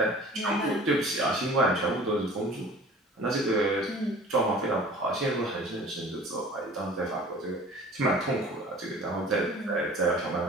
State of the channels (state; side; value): normal; both; correlation 0.45